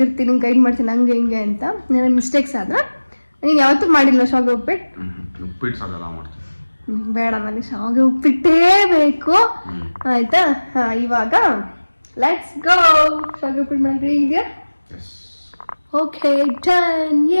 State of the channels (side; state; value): both; inverted; correlation -1.00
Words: ಇರ್ತೀನಿ, ಗೈಡ್ ಮಾಡ್ತೀನಿ ಹಂಗೆ ಹಿಂಗೆ ಅಂತ. ನನ್ನ ಮಿಸ್ಟೇಕ್ಸ್ ಆದ್ರೆ ನೀನು ಯಾವತ್ತೂ ಮಾಡಿಲ್ಲ ಶಾವಿಗೆ ಉಪ್ಪಿಟ್ಟು? ಉಪ್ಪಿಟ್ಟು ಸಾಗೆಲ್ಲ ಮಾಡ್ತೀನಿ. ಬೇಡ, ನನಗೆ ಶಾವಿಗೆ ಉಪ್ಪಿಟ್ಟೇ ಬೇಕು. ಆಯ್ತಾ? ಇವಾಗ ಲೆಟ್ಸ್ ಗೋ. ಶಾವಿಗೆ ಉಪ್ಪಿಟ್ಟು ಮಾಡಿ ಇದೆಯಾ? Okay, done!